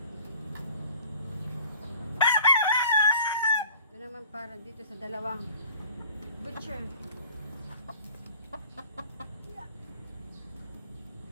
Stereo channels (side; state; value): both; inverted; correlation -0.49